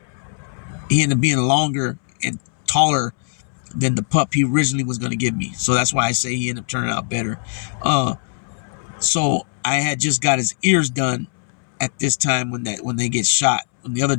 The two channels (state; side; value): silent; right; 65 dB below the other